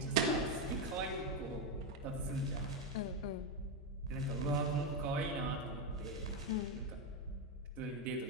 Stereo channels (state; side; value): normal; both; correlation 0.07